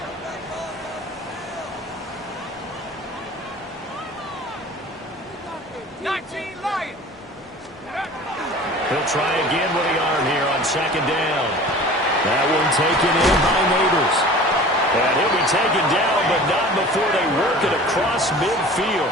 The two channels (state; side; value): normal; both; correlation 0.42